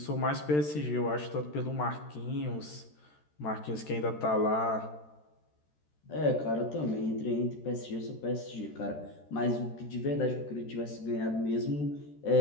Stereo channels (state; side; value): late; right; 13 ms